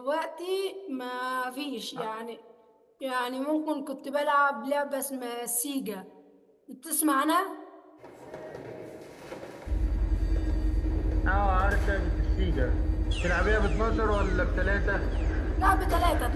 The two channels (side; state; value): both; identical; correlation 1.00